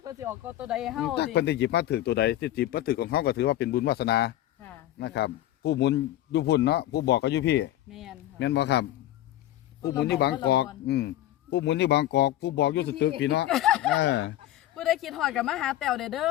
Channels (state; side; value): quieter; right; 13.8 dB